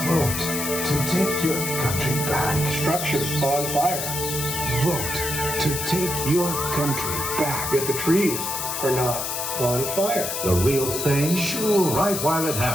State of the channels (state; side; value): noise; left; hiss, 3 dB below the sound